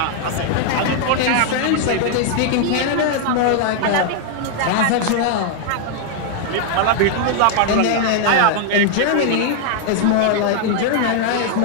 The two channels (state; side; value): different; both; correlation 0.00